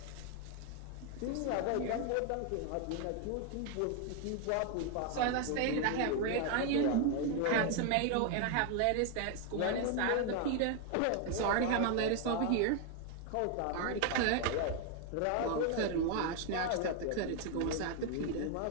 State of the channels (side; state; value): both; different; correlation 0.01